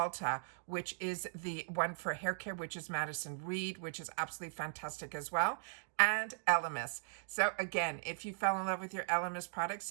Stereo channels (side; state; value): left; silent; digital silence